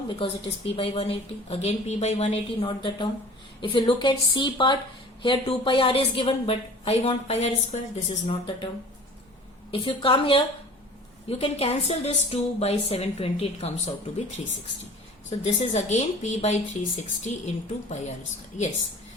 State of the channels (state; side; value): normal; both; correlation 0.45